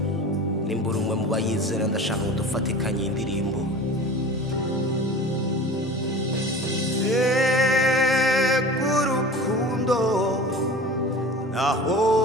Nimbura umwe mu bayizera ndashaka ngo dufatikanye indirimbo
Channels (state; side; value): normal; both; correlation 0.37